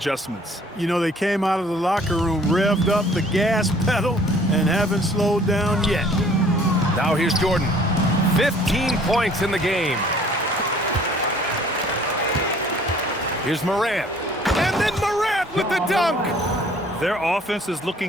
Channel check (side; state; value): both; normal; correlation 0.55